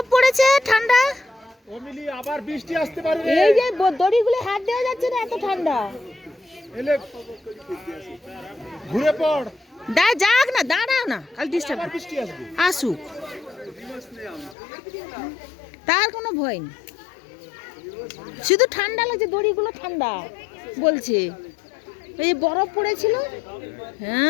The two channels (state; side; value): drops out; right; at 14.6 s